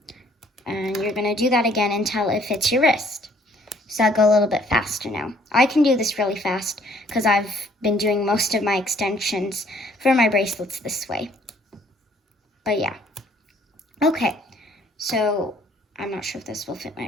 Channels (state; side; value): normal; both; correlation 0.61